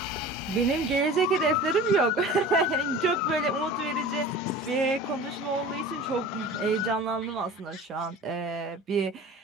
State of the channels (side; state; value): both; normal; correlation 0.38